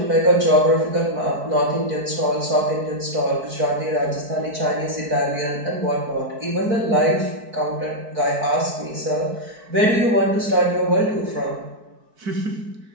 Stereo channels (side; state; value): left; late; 4.6 ms